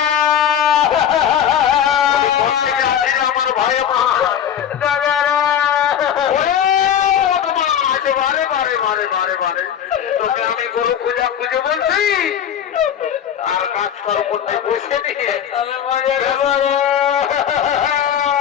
আমার ভাই বারে বারে বারে বারে বারে তোকে আমি গরু খুঁজে খুঁজে বলছি আর কাজ করার করতে বসে নিয়ে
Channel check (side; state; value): right; quieter; 9.2 dB